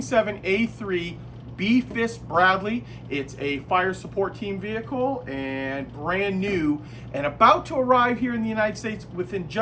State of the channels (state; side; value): identical; both; correlation 1.00